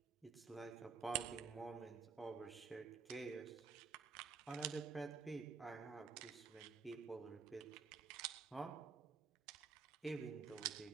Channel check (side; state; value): left; quieter; 5.4 dB